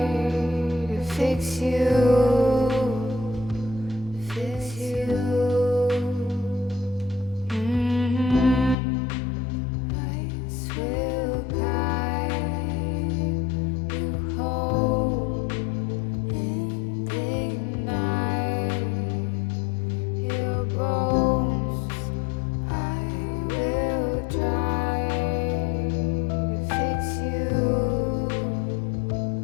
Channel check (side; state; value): right; drops out; at 8.8 s